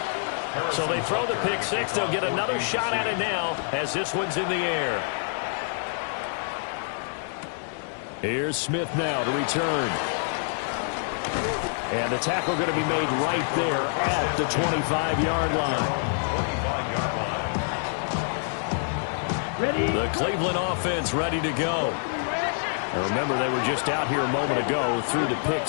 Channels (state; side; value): silent; right; digital silence